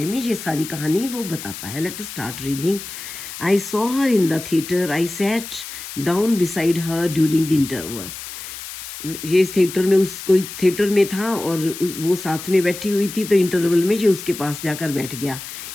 में ये सारी कहानी वो बताता है. Let us start reading. I saw her in the theatre. I sat down beside her during the interval. ये इस थिएटर में कोई थिएटर में था और वो साथ में बैठी हुई थी, तो इंटरवल में ये उसके पास जाकर बैठ गया.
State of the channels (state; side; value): noise; left; hiss, 11 dB below the sound